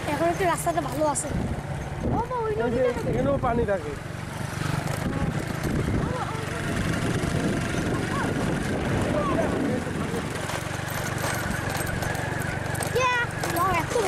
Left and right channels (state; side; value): identical; both; correlation 1.00